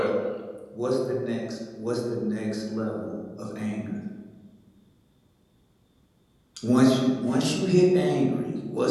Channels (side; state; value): both; identical; correlation 1.00